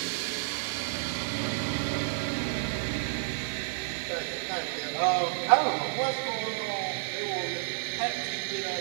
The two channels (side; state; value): left; silent; digital silence